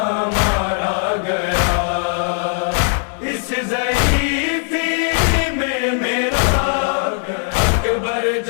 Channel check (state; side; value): silent; right; 57 dB below the other